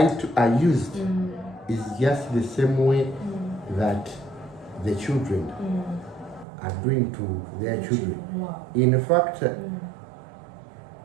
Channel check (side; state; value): left; drops out; at 6.5 s